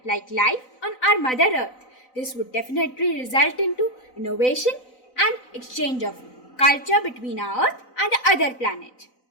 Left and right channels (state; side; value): late; right; 4.0 ms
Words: like life on our Mother Earth, this would definitely result into innovation and exchange of culture between our Earth and the other planet.